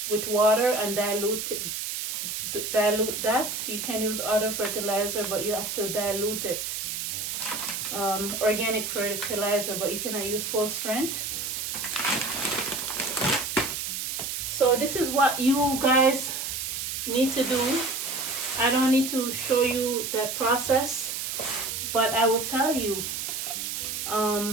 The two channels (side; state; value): right; noise; hiss, 3 dB below the sound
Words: with water and dilute that. You can use other fertilizer, but you have to dilute it. Organic fertilizer, but you cannot use full strength. So this is what you guys need to do. I don't need to show you the process, but I will tell you.